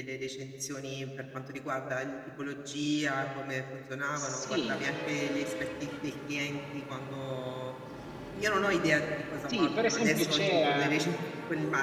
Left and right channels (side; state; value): both; identical; correlation 1.00